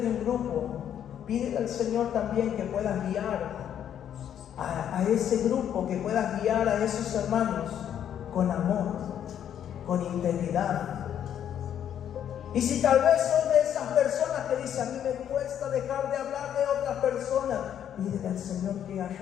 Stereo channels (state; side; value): quieter; right; 9.7 dB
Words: un grupo, pídele al Señor también que puedas guiar a ese grupo, que puedas guiar a esos hermanos con amor, con integridad. Y si tal vez son de esas personas que dicen: a mí me cuesta dejar de hablar de otras personas, pídele al Señor que